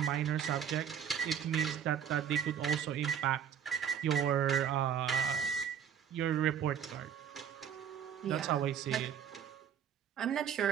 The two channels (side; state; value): left; quieter; 8.7 dB